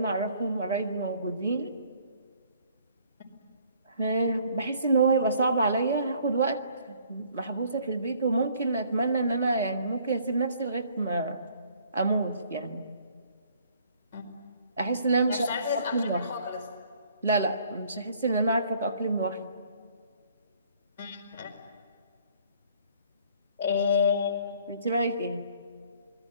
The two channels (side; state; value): both; inverted; correlation -0.60